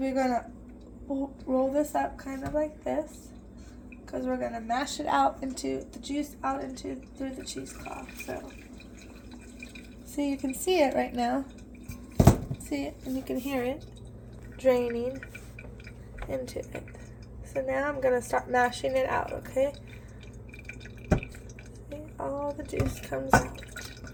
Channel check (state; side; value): identical; both; correlation 1.00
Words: going to roll this up kind of like this. Because we're going to mash it out into the juice through the cheesecloth. So you can see it right now. See it and you can hear it draining into it. So now I'm going to start mashing it out, okay? See, all the juice comes out.